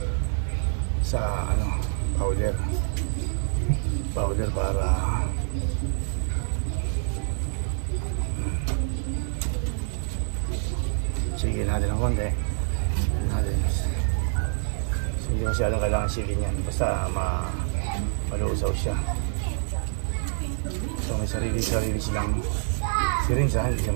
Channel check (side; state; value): left; silent; digital silence